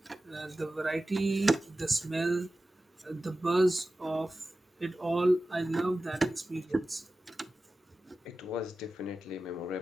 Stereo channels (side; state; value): both; normal; correlation 0.95